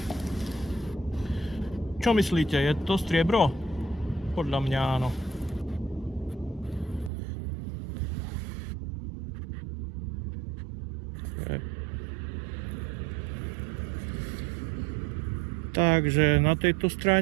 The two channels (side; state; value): left; drops out; at 7.1 s